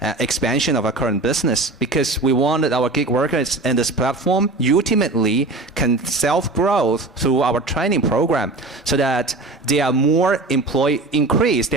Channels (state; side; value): quieter; left; 3.2 dB